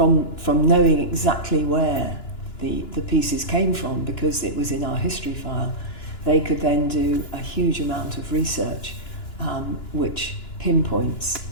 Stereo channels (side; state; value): right; late; 2.9 ms